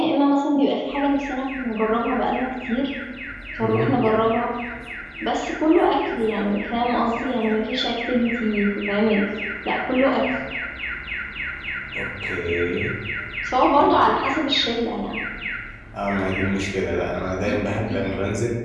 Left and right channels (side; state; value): both; identical; correlation 1.00